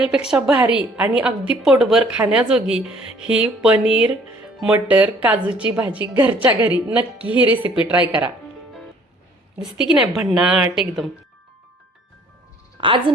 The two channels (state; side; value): normal; both; correlation 0.57